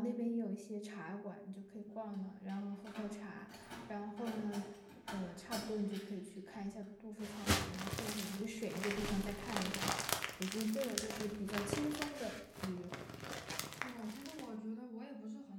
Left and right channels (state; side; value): identical; both; correlation 1.00